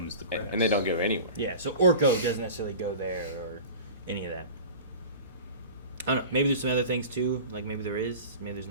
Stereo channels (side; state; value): both; inverted; correlation -0.36